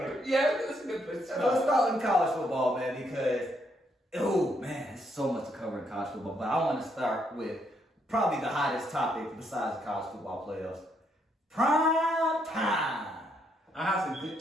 That's a good place. Let's start in college football, man, because there's so much to cover in college football. But I want to start with probably the hottest topic besides the college football playoffs. Prime time. I have some good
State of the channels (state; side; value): normal; both; correlation 0.74